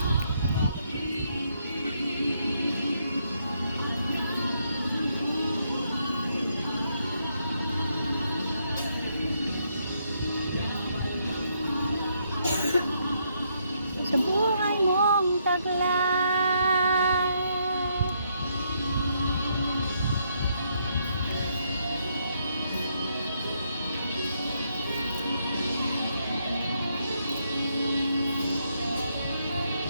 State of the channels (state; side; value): inverted; both; correlation -0.75